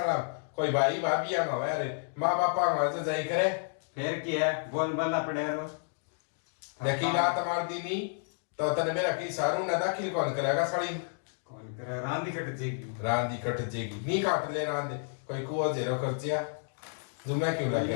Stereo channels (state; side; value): silent; right; digital silence